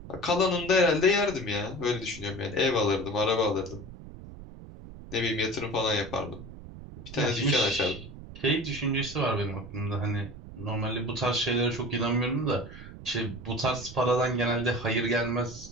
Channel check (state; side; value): noise; right; rumble, 14 dB below the sound